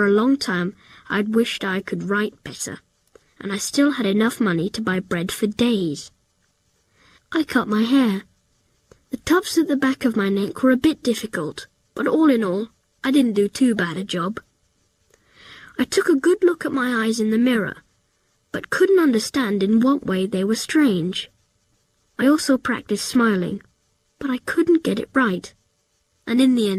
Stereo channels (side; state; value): both; identical; correlation 1.00